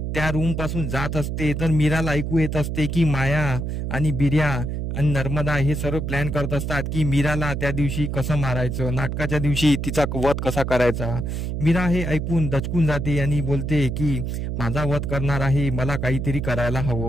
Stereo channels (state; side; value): noise; right; hum, 3 dB below the sound